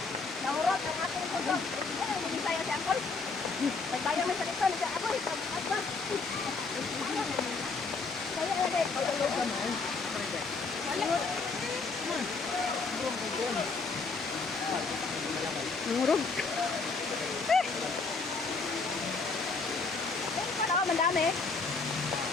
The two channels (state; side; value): quieter; right; 4.2 dB